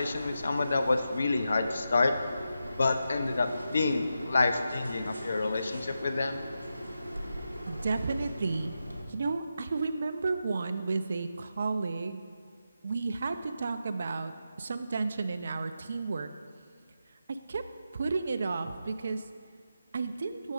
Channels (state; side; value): inverted; both; correlation -0.88